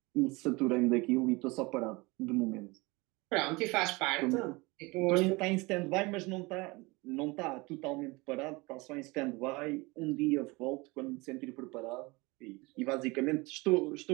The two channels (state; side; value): quieter; left; 24.5 dB